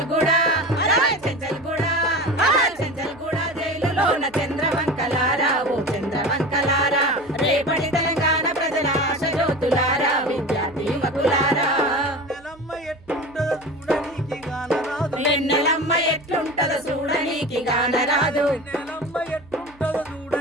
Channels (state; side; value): noise; right; hum, 25 dB below the sound